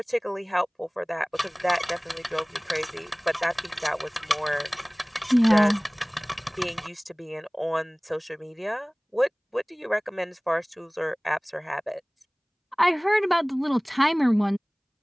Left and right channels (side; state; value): both; identical; correlation 1.00